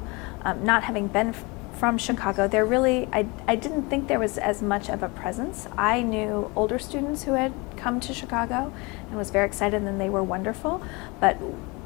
not having been from Chicago, I didn't think there was as much of a presence. I knew older students who had come to Chicago and was very excited, and they were wonderful. But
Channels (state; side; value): quieter; right; 26.7 dB